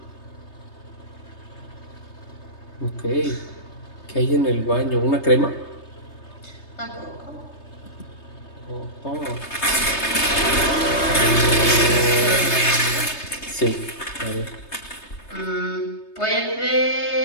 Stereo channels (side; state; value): right; late; 3.3 ms